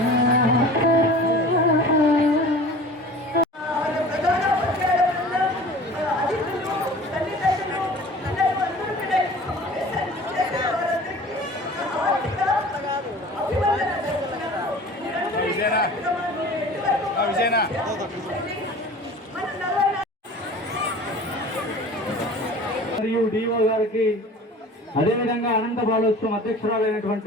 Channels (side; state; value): both; normal; correlation 0.42